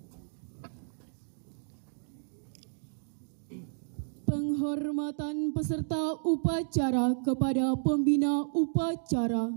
Penghormatan peserta upacara kepada pembina upacara.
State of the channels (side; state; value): left; silent; digital silence